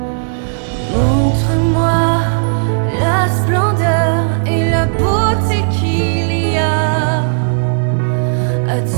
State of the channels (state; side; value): silent; left; digital silence